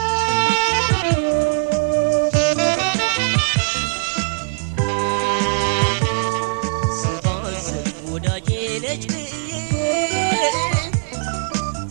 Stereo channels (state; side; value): silent; left; 66 dB below the other